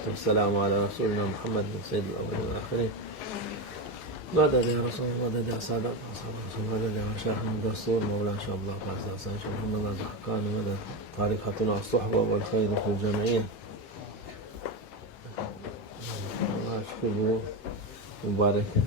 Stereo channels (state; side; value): normal; both; correlation 0.14